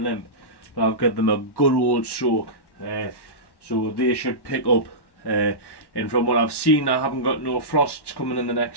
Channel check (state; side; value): late; right; 1.1 ms